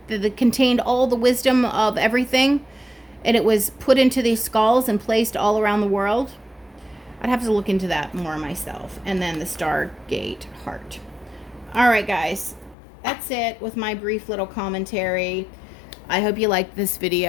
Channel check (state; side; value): drops out; right; at 12.8 s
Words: That contained all the wisdom of everything, and it was put into these skulls and placed all around the world. I'd have to look into that more myself. And then the Stargate Heart. All right, guys. that's it with my brief little commentary. I hope you liked this